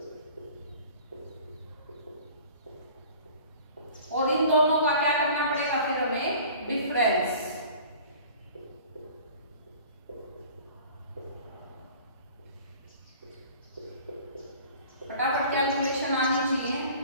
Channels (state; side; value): inverted; both; correlation -0.46